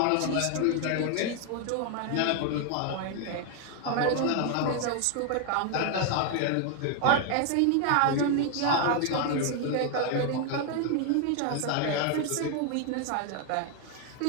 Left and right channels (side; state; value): both; different; correlation 0.00